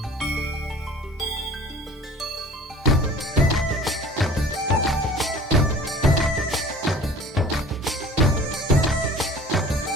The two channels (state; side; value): normal; both; correlation 0.46